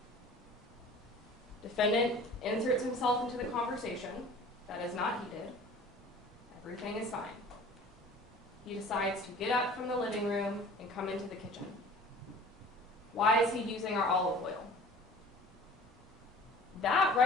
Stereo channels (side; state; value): both; normal; correlation 0.45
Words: Defendant inserts himself into the conversation. That is not heated. Everything is fine. He decides to get up from the living room and come into the kitchen. Why is he using our olive oil? That